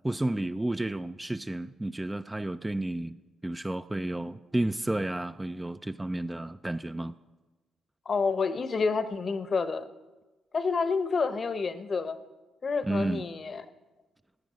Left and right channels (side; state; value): both; normal; correlation 0.91